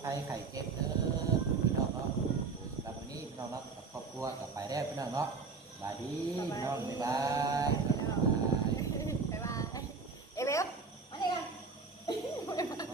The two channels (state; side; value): quieter; left; 4.6 dB